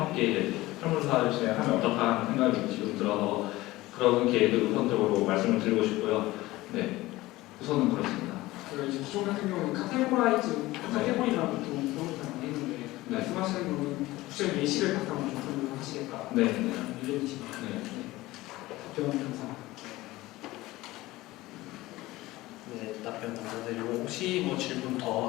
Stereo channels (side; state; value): right; quieter; 18.5 dB